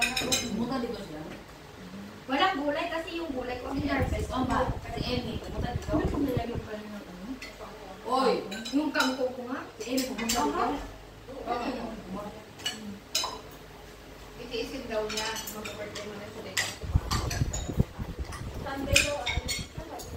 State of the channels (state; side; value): identical; both; correlation 1.00